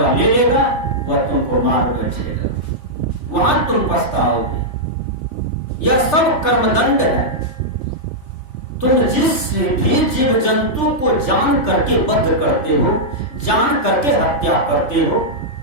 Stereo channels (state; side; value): late; right; 3.3 ms